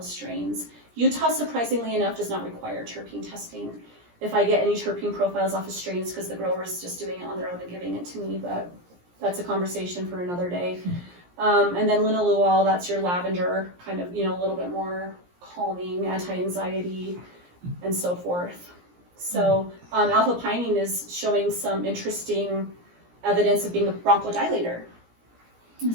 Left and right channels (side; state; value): left; late; 17 ms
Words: strains. Utah, surprisingly enough, does not require terpene testing. If I get any terpene profiles off of strains, because the grower is just doing it on their own and giving it to me, but that's a conversation for another day. And then linalool, that's your lavender, kind of, a little bit more calming, anti-anxiety, and so forth. So alpha-pinene is showing some interesting evidence of being a bronchodilator.